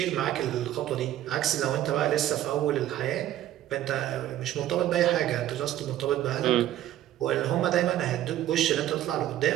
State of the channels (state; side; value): quieter; left; 12.9 dB